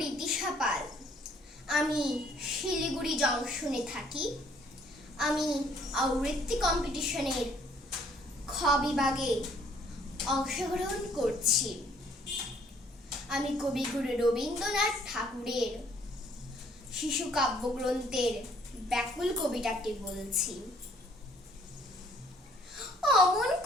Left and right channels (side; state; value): both; normal; correlation 0.62